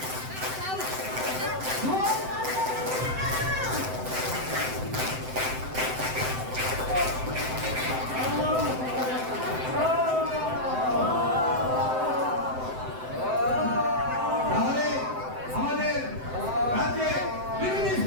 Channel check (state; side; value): late; left; 7.8 ms